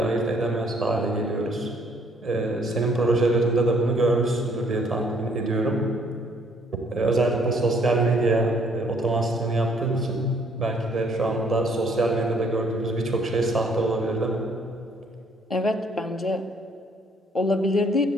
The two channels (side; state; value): both; normal; correlation 0.64